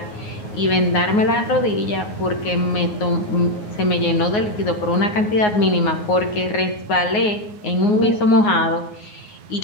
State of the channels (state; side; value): late; right; 9.5 ms